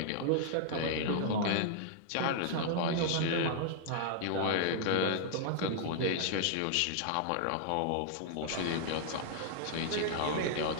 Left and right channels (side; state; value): both; different; correlation 0.00